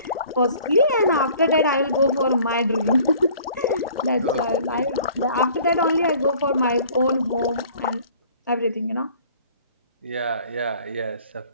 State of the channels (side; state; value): both; inverted; correlation -0.52